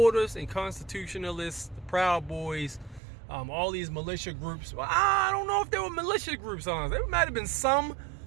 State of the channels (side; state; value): left; drops out; at 3.0 s